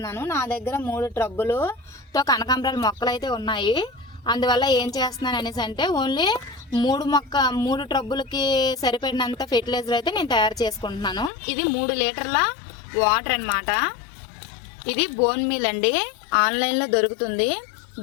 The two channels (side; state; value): right; drops out; at 11.3 s